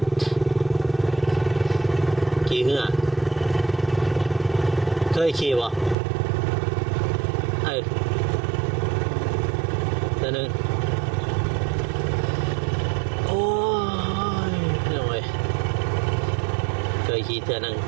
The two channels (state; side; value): drops out; left; at 6.0 s